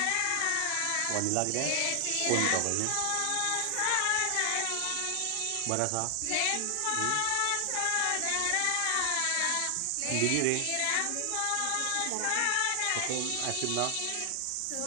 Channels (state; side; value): different; both; correlation 0.00